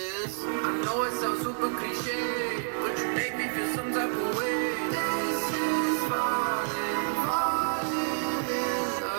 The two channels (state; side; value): silent; left; digital silence